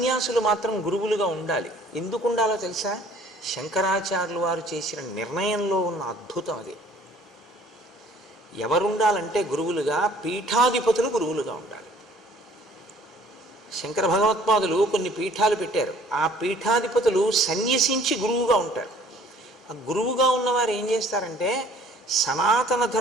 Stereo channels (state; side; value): normal; both; correlation 0.55